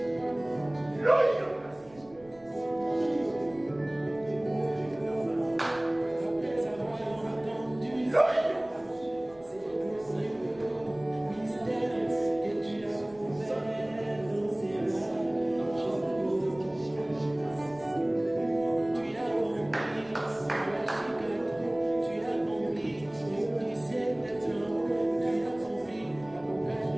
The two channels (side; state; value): right; noise; rumble, 26 dB below the sound